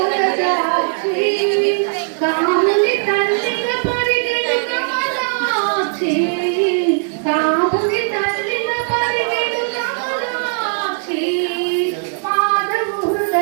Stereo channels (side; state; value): left; silent; digital silence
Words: కాముని తల్లిగా పరిగెడు కమలాక్షి కాముని తల్లిగా పరిగెడు కమలాక్షి మాధవు